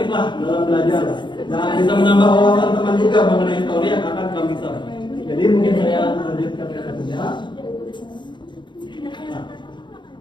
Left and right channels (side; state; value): right; late; 0.22 ms